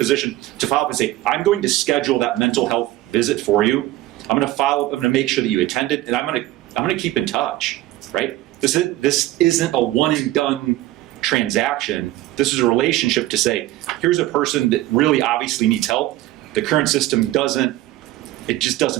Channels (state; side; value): quieter; left; 16.0 dB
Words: to follow up and say, I'm going to schedule that mental health visit for you. I'm going to follow up. I'm going to make sure that you attend it, and I'm going to keep in touch, right? This isn't a one and done transaction. This is a relationship to say, here's a person that really obviously needs help. The current system just